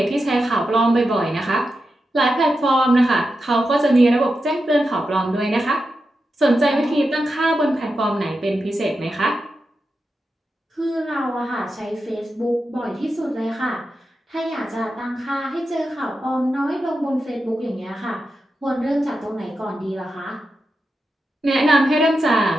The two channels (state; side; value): normal; both; correlation 0.89